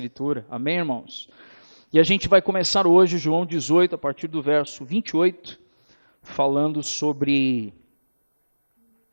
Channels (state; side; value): inverted; both; correlation -1.00